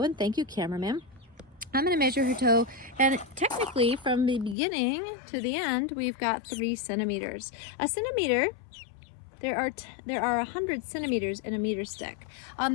and thank you cameraman, I'm going to measure her toe, and technically from the beginning to the end we've got 3 centimeters. A centimeter, there are 100 centimeters in a meter stick.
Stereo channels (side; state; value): right; drops out; at 4.5 s